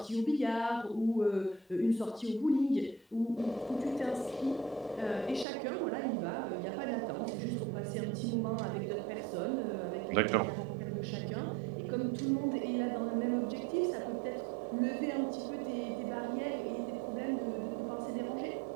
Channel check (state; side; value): drops out; left; at 5.5 s